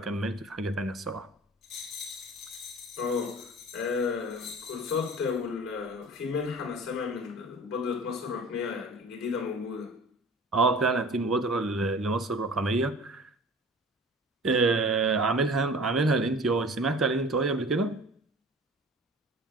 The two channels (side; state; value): both; normal; correlation 0.42